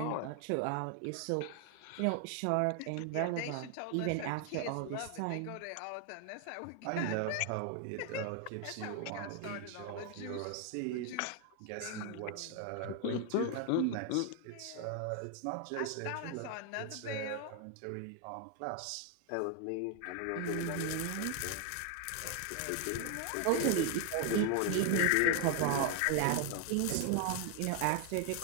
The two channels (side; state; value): both; different; correlation 0.00